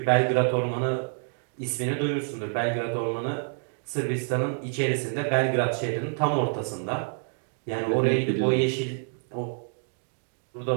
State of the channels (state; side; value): silent; left; digital silence